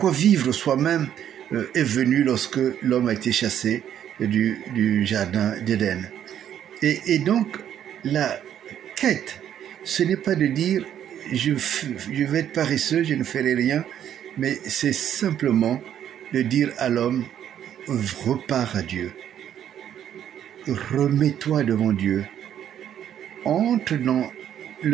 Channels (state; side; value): quieter; left; 10.1 dB